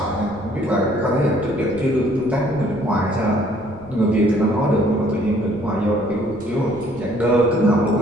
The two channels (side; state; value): left; noise; rumble, 19 dB below the sound